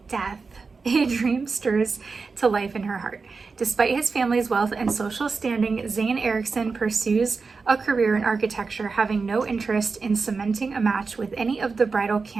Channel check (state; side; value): quieter; left; 4.5 dB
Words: a dream stirs to life in her heart. Despite his family's wealth and social standing, Zane Erickson pursues a career in architecture, having no interest in cementing a match with any of the bridal